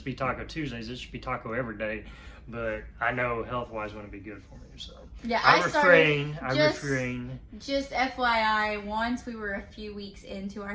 be Taco Tuesdays. It should be taco every day. But I know health-wise wouldn't be good for me. So yeah, I refrain. Just FYI, once we were a few weeks into our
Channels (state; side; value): identical; both; correlation 1.00